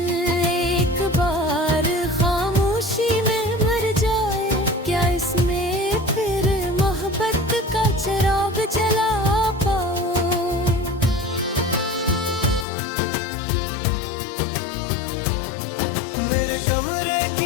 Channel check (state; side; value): drops out; right; at 12.7 s